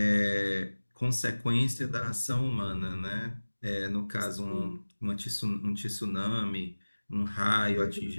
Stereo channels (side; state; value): both; inverted; correlation -1.00